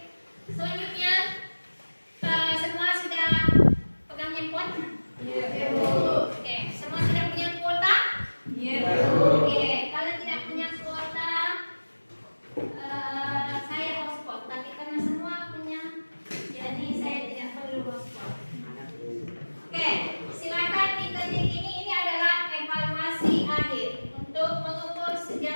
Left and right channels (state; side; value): inverted; both; correlation -1.00